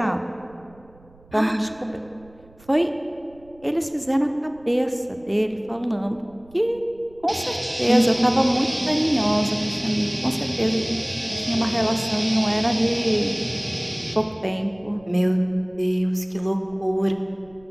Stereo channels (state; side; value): noise; right; rumble, 27 dB below the sound